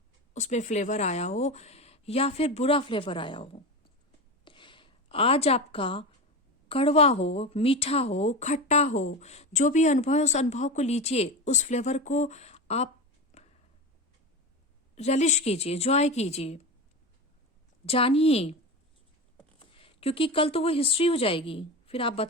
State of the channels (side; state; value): both; normal; correlation 0.23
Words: उसमें फ्लेवर आया हो या फिर बुरा फ्लेवर आया हो। आज आपका कड़वा हो, मीठा हो, खट्टा हो, जो भी अनुभव है उस अनुभव को लीजिए, उस फ्लेवर को आप relish कीजिए, जॉय कीजिए, जानिए, क्योंकि कल तो वो हिस्ट्री हो जाएगी। फिर आप